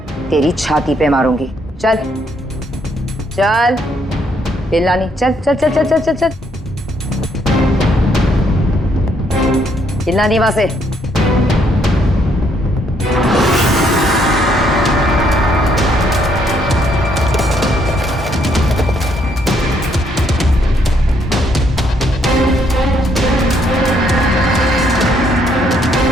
तेरी छाती पे मारूंगी। चल चल हिलना नहीं। चल चल चल चल चल चल चल हिलना नहीं वहां से।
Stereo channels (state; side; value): normal; both; correlation 0.71